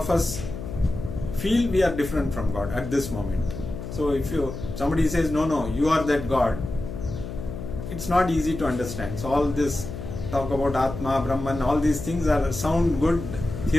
us feel we are different from God at this moment. So if somebody says, no, you are that God, it's not easy to understand. So all this talk about Atma, Brahman, all these things sound good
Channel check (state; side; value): noise; left; hum, 8 dB below the sound